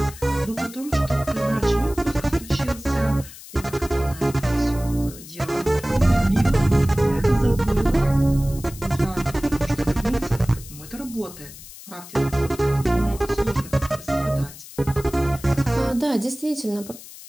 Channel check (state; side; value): noise; left; hiss, 16 dB below the sound